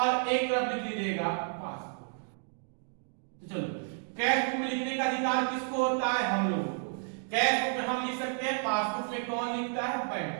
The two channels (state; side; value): silent; left; 57 dB below the other